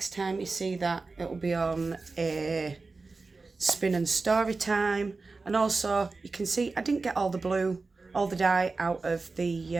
time you see that, it will be on a spin and story time. And also, you can see I didn't get all the blue, all the dye out of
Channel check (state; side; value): quieter; left; 3.9 dB